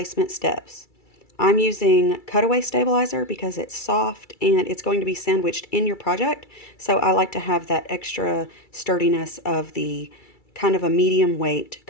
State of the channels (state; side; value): late; right; 2.3 ms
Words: steps. I'm using cutaway stabilizer because it's soft and it's going to be sandwiched in your project, so I like to have that extra sturdiness of the kind of a medium weight